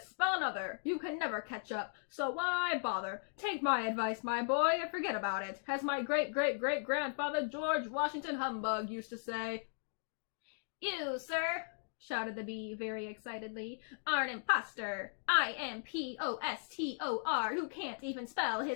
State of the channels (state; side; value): silent; right; digital silence